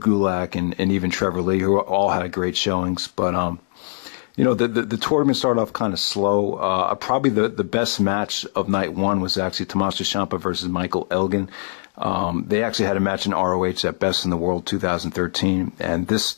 and even Trevor Lee, who all had great showings. But the tournament started off kind of slow. Probably the best match of night 1 was actually Tommaso Ciampa versus Michael Elgin. They actually had a match in ROH at Best in the World 2013, and this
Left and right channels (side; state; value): right; silent; digital silence